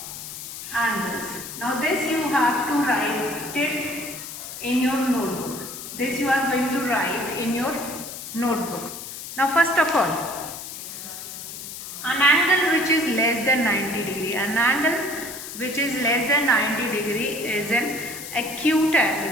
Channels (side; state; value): left; noise; hiss, 10 dB below the sound